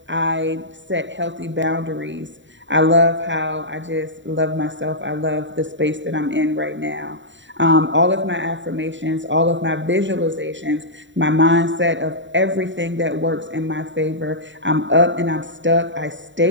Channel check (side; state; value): left; late; 0.54 ms